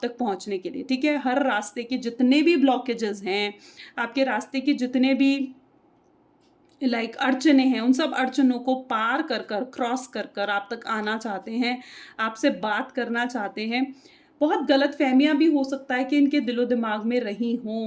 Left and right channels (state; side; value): identical; both; correlation 1.00